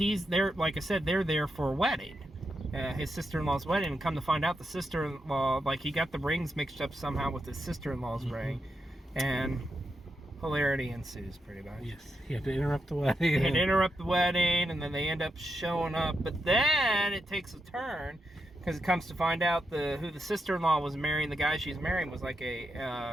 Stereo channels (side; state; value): both; normal; correlation 0.85